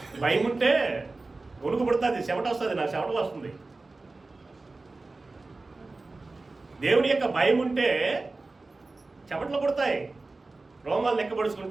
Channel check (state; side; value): quieter; left; 3.4 dB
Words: భయం ఉంటే ఉణుకు పుడుతుంది, చెమట వస్తుంది, నాకు చెమట వస్తుంది. దేవుని యొక్క భయం ఉంటే చెమటలు పుడతాయి, రోమాలు